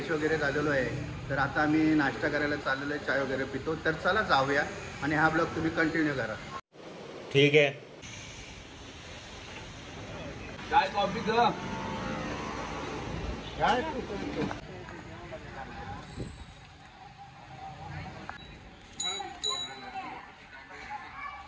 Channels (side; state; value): both; identical; correlation 1.00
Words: वगैरे झालेलो आहे. तर आता आम्ही नाश्ता करायला चाललेलो आहे, चाय वगैरे पितो. तर चला जाऊया आणि हा ब्लॉग तुम्ही कंटिन्यू करा. ठीक आहे. काय कॉफी ग? काय